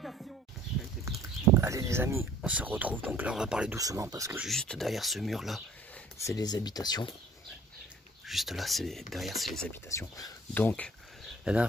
Allez les amis, on se retrouve. Donc là on va parler doucement parce que juste derrière ce mur là, c'est les habitations. Juste là, derrière c'est les habitations. Donc la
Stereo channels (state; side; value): normal; both; correlation 0.53